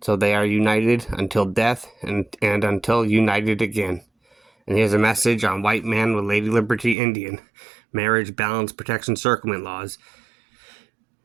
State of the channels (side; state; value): left; drops out; at 7.0 s